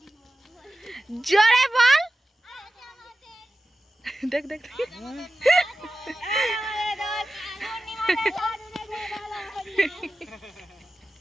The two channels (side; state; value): both; normal; correlation 0.94